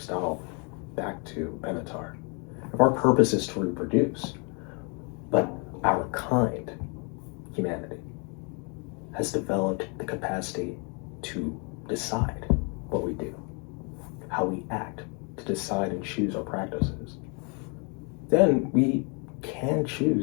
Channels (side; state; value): right; quieter; 35.0 dB